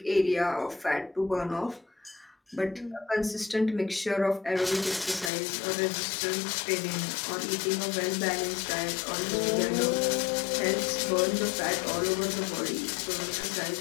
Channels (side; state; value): right; drops out; at 5.3 s